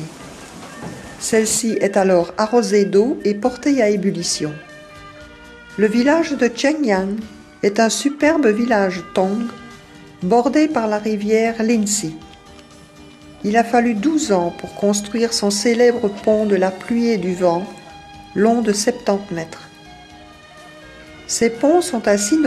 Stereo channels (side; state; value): both; identical; correlation 1.00